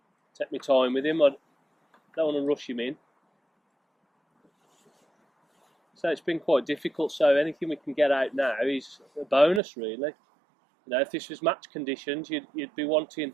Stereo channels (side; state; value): left; drops out; at 9.6 s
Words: Take my time with him. I don't want to rush him in. So it's been quite difficult. So anything we can get out now is a bonus, really. If this was match conditions, you'd be wanting